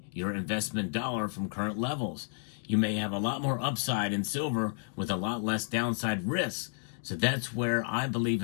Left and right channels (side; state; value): right; silent; digital silence